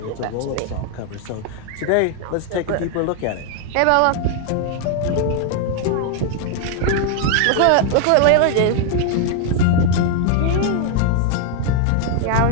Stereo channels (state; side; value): different; both; correlation 0.00